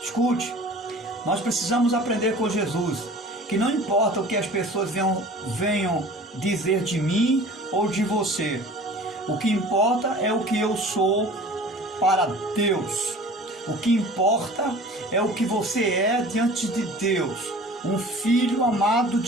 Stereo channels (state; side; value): normal; both; correlation 0.44